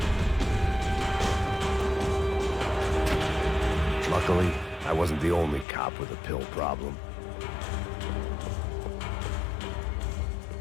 Luckily, I wasn't the only cop with a pill problem.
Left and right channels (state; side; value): drops out; right; at 5.7 s